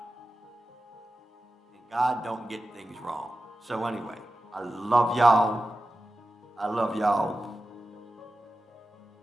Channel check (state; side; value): normal; both; correlation 0.93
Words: And God don't get things wrong. So anyway, I love y'all.